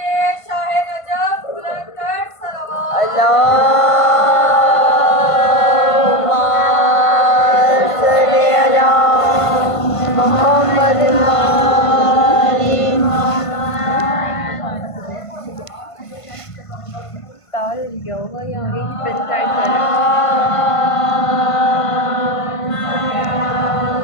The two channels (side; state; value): right; late; 1.5 ms